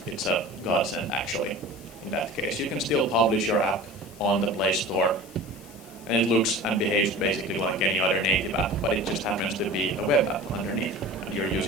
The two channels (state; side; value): noise; left; hiss, 22 dB below the sound